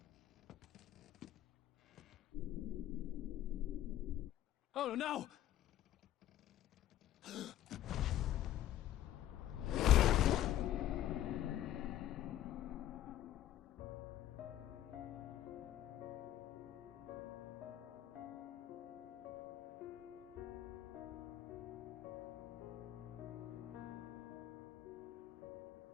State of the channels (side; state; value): right; quieter; 12.7 dB